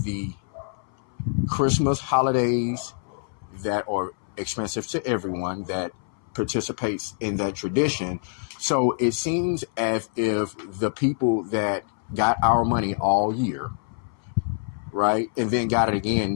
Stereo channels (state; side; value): silent; right; 60 dB below the other